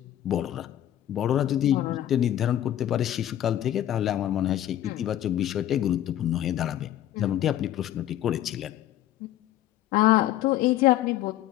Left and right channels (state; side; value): quieter; right; 12.4 dB